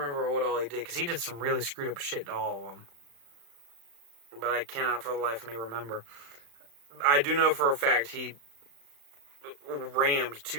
what all he did, because he did some really screwed up shit to all of them, but I cannot for the life of me remember. I do know for a fact he rammed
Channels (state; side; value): late; left; 35 ms